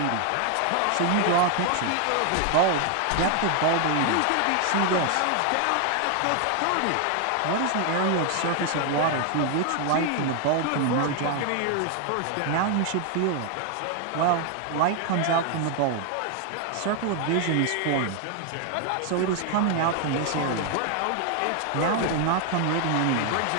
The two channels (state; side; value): different; both; correlation 0.00